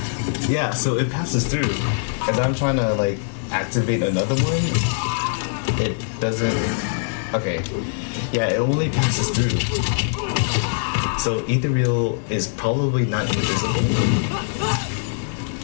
yeah, so it passes through. As I'm trying to like activate another one, it doesn't. Okay, yeah, it only passes through. So Ethereal is probably not invisible,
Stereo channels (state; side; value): silent; right; digital silence